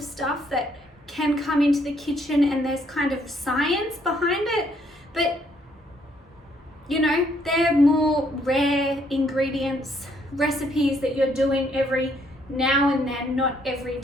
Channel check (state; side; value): normal; both; correlation 0.69